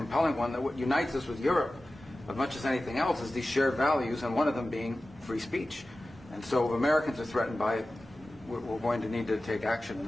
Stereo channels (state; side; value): normal; both; correlation 0.95